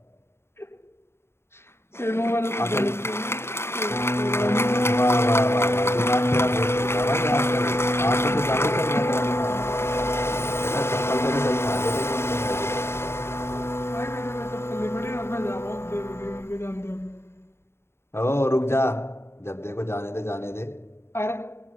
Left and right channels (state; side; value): late; right; 0.12 ms